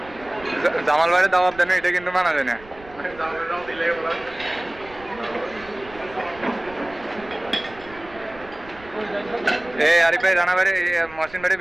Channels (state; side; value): noise; right; rumble, 21 dB below the sound